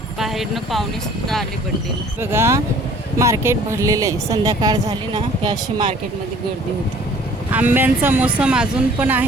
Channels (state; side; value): normal; both; correlation 0.53